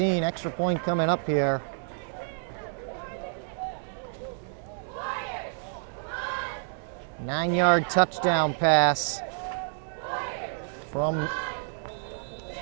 Extra point coming up here. Nine-yard touchdown pass from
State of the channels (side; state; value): left; silent; digital silence